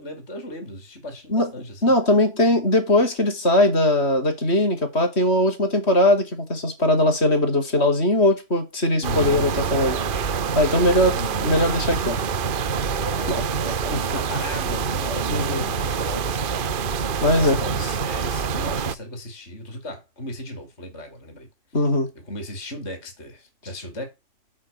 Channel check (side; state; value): right; late; 2.5 ms